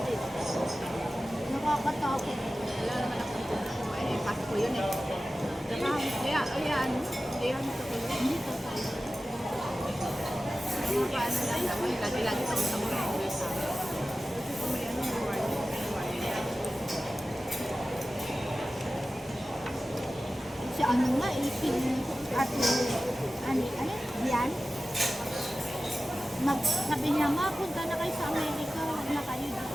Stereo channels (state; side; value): normal; both; correlation 0.95